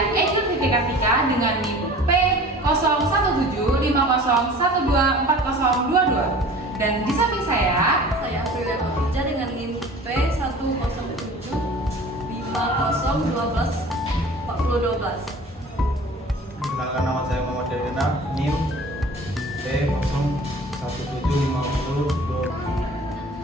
Eki Fitri Kartika dengan NIM P017501240022. Dan di samping saya Aprilia Khadijah dengan NIM P10750124012. Perkenalkan, nama saya Muhammad Delina, NIM P017502.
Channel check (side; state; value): both; normal; correlation 0.43